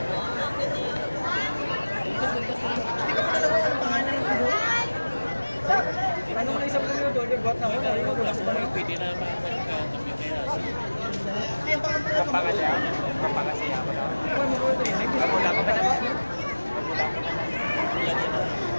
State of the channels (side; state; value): both; inverted; correlation -1.00